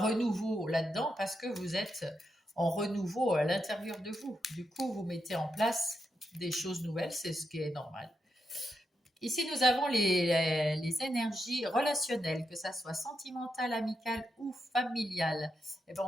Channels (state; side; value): normal; both; correlation 0.85